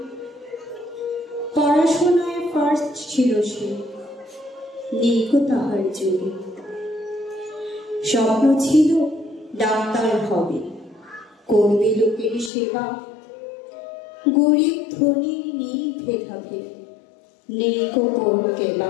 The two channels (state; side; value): drops out; right; at 12.5 s